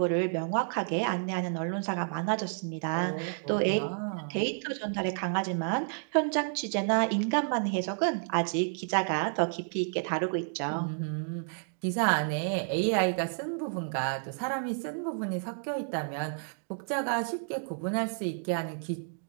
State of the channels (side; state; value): left; silent; digital silence